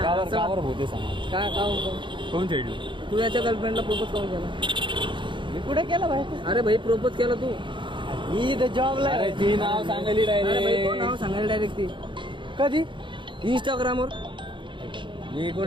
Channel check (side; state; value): left; late; 0.23 ms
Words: का बरं भूते सांग. काय कोण खेळलं? तू याच्या गर्लफ्रेंडला प्रपोज करून केला? मी कुठे केला भाई? अरे भाई प्रपोज केला तू जॉबला. अरे ती नाव सांगायली नाव डायरेक्ट. सांगायला डायरेक्ट ती कधी? इंस्टाग्रामवर. हे